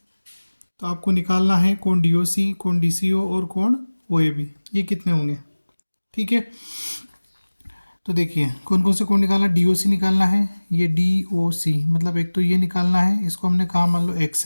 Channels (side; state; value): both; inverted; correlation -1.00